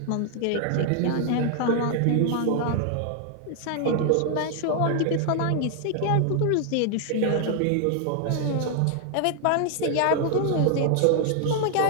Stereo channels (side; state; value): both; different; correlation 0.00